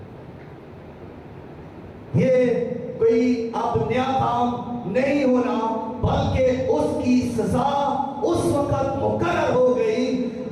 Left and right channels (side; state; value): both; identical; correlation 1.00